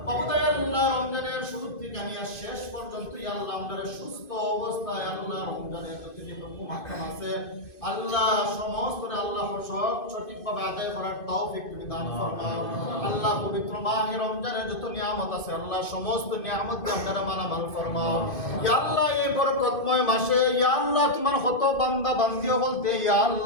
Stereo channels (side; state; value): right; late; 2.5 ms